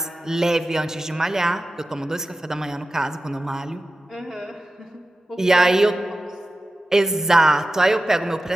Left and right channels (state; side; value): normal; both; correlation 0.94